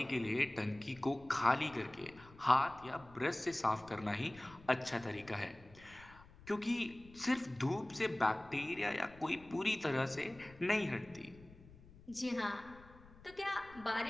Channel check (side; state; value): left; noise; rumble, 22 dB below the sound